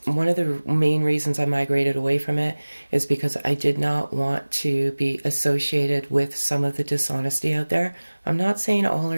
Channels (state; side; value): inverted; both; correlation -1.00